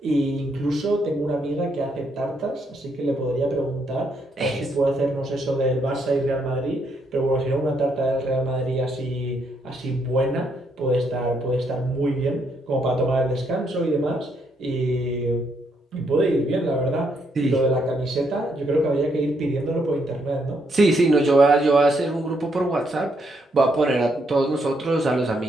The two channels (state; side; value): normal; both; correlation 0.75